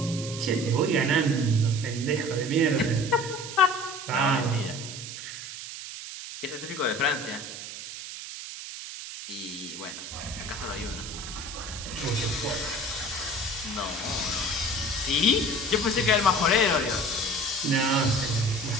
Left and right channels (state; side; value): noise; right; hiss, 10 dB below the sound